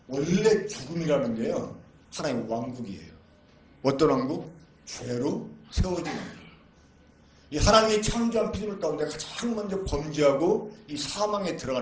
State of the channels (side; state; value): both; identical; correlation 1.00